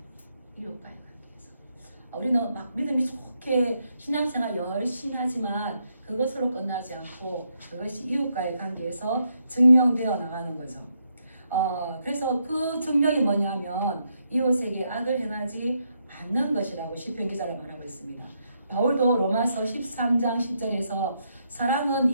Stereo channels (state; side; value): inverted; both; correlation -0.78